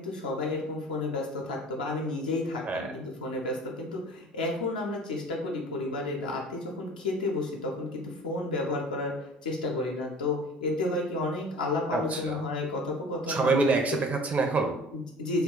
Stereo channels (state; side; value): normal; both; correlation 0.44